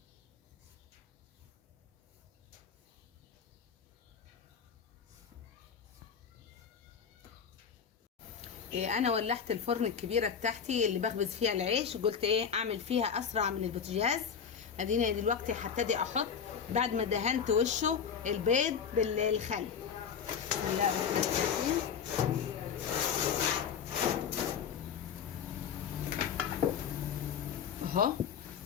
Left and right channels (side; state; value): right; quieter; 7.1 dB